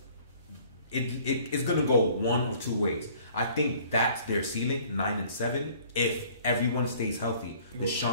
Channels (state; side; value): inverted; both; correlation -0.55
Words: it's going to go one of two ways. I think that's their ceiling, 9-7. If everyone stays healthy,